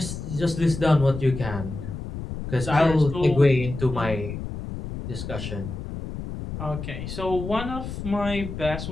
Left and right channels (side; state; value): left; noise; rumble, 8 dB below the sound